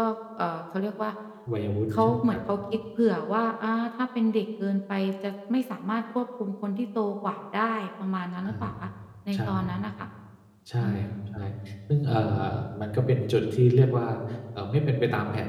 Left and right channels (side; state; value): both; identical; correlation 1.00